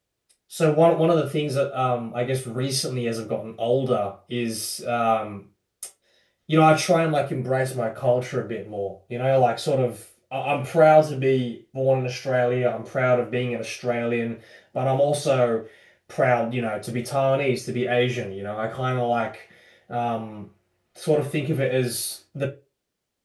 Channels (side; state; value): both; identical; correlation 1.00